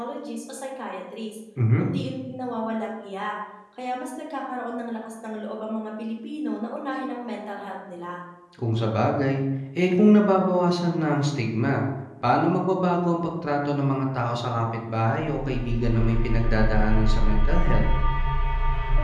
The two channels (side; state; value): both; identical; correlation 1.00